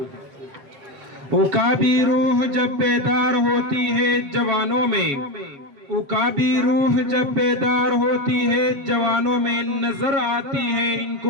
عقابی روح جب بیدار ہوتی ہے جوانوں میں، عقابی روح جب بیدار ہوتی ہے جوانوں میں، نظر آتی ہے ان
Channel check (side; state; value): left; late; 7.7 ms